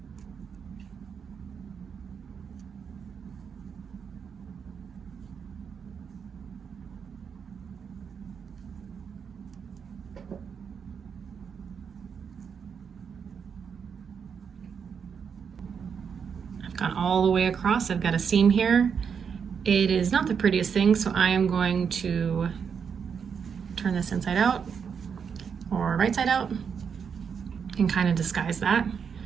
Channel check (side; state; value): left; quieter; 6.7 dB